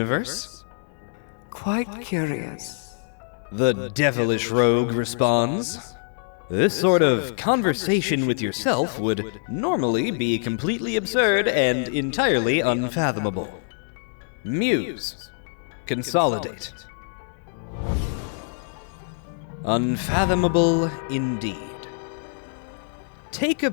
Quite curious. The devilish rogue responds. This sort of conversation with yourself would normally be completely absurd and entirely unfathomable. Muse. Consolidate. Unfathomable indeed. Take a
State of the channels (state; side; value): silent; right; digital silence